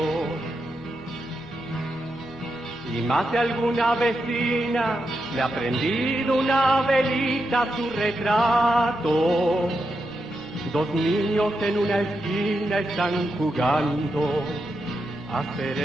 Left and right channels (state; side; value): noise; right; hum, 28 dB below the sound